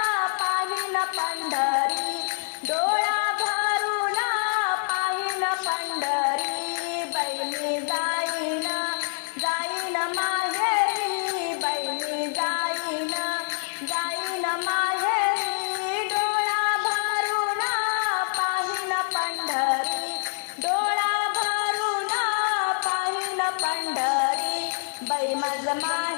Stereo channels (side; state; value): right; silent; digital silence